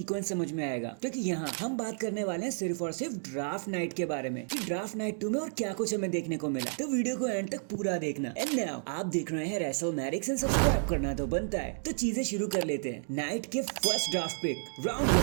समझ में आएगा। क्योंकि यहाँ हम बात करने वाले हैं सिर्फ और सिर्फ ड्राफ्ट नाइट के बारे में कि ड्राफ्ट नाइट 2 में और क्या कुछ हमें देखने को मिला। तो वीडियो को एंड तक पूरा देखना। एंड नाउ आप देख रहे हैं रेसलमैनिक्स एंड सब्सक्राइब करना तो बनता है। तो चीजें शुरू कर लेते हैं नाइट के फर्स्ट ड्राफ्ट पिक राउंड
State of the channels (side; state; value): left; silent; digital silence